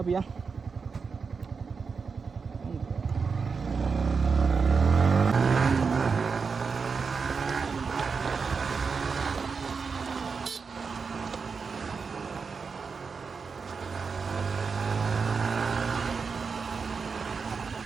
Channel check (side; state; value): left; quieter; 5.2 dB